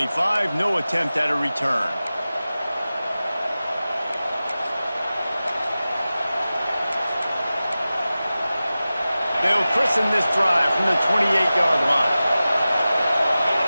No attempt at a return. They'll christen this drive from the 28-yard line.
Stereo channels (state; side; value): inverted; both; correlation -0.95